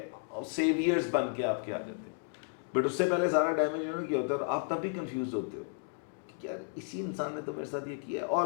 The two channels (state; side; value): silent; right; 56 dB below the other